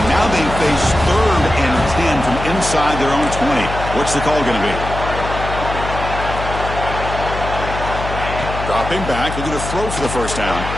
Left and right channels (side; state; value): left; noise; hum, 7 dB below the sound